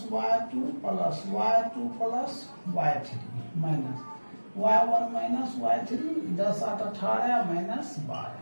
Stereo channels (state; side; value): inverted; both; correlation -1.00